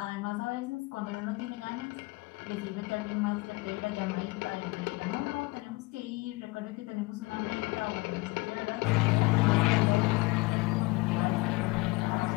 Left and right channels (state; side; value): quieter; right; 23.2 dB